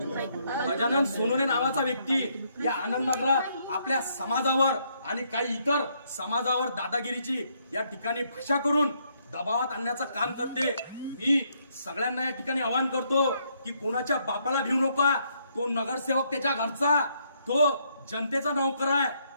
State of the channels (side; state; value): both; inverted; correlation -0.72